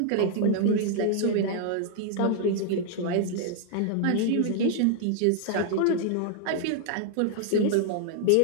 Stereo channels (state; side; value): different; both; correlation 0.00